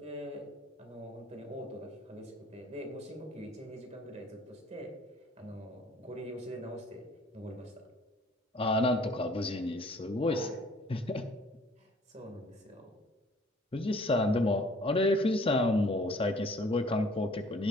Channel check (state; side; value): normal; both; correlation 0.55